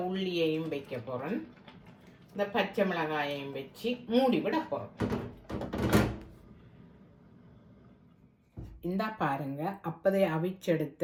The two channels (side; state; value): both; identical; correlation 1.00